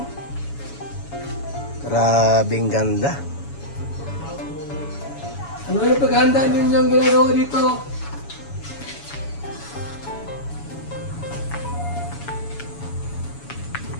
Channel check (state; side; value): late; right; 7.1 ms